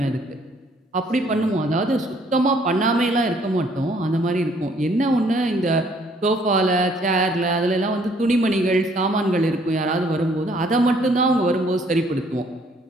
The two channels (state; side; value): normal; both; correlation 0.63